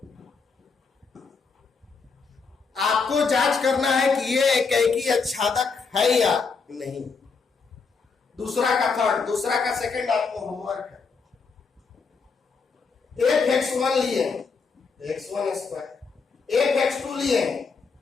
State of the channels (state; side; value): quieter; right; 5.0 dB